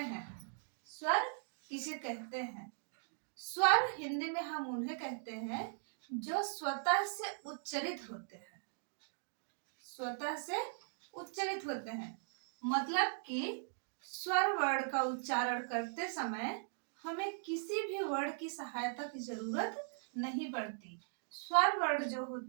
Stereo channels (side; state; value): left; silent; digital silence